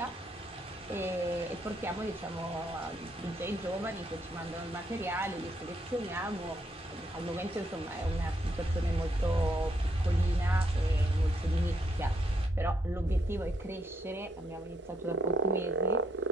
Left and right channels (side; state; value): both; normal; correlation 0.75